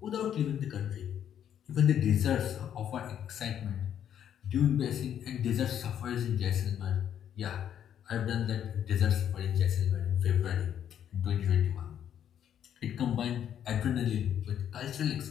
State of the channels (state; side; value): quieter; right; 9.6 dB